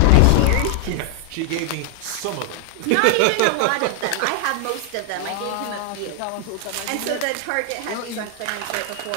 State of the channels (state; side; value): different; both; correlation 0.00